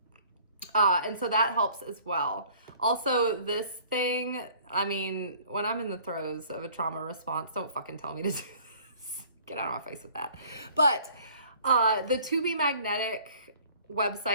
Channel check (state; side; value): inverted; both; correlation -0.53